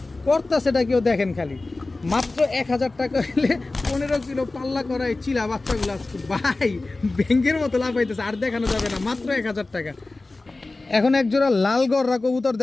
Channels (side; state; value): right; quieter; 3.2 dB